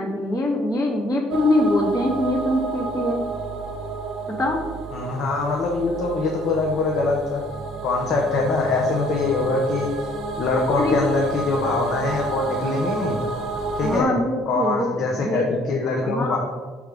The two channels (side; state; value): both; normal; correlation 0.60